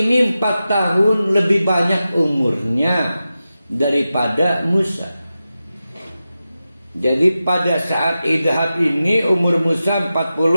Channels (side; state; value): both; inverted; correlation -0.92